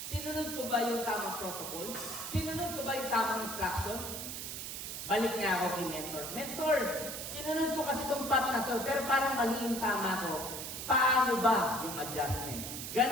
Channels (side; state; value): right; noise; hiss, 6 dB below the sound